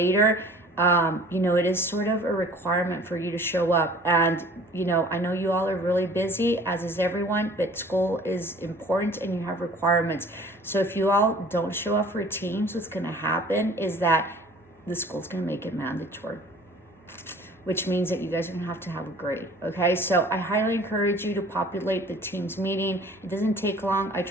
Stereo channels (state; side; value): normal; both; correlation 0.48